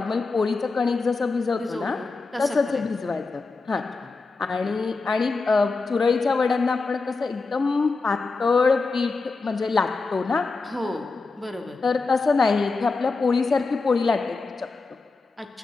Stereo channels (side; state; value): right; quieter; 4.0 dB